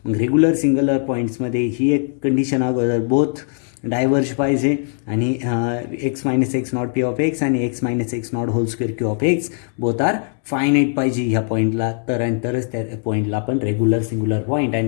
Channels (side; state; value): right; silent; 66 dB below the other